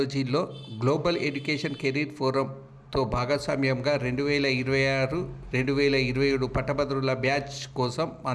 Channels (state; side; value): identical; both; correlation 1.00